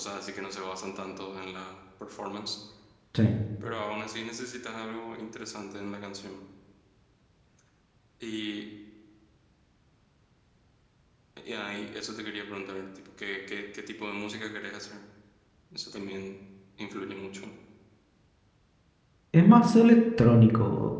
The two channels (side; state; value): both; identical; correlation 1.00